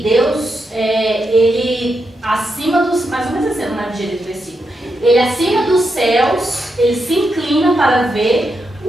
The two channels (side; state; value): both; normal; correlation 0.84